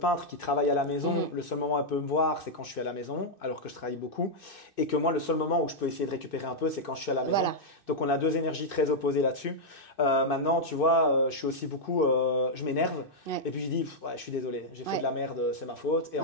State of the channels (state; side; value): late; right; 2.6 ms